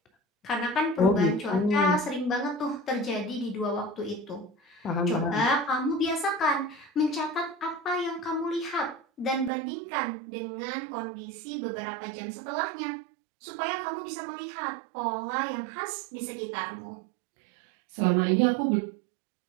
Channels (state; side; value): drops out; left; at 9.5 s